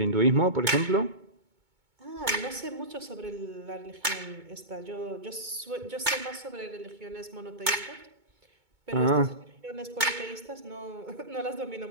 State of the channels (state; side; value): late; left; 2.2 ms